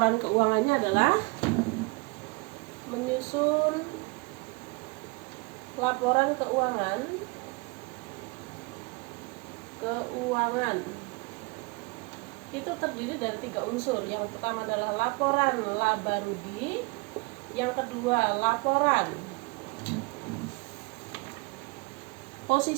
keuangannya adalah menyusun laporan keuangan itu terdiri dari 3 unsur. Yang pertama adalah laporan laba rugi, yang kedua laporan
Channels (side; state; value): left; quieter; 28.1 dB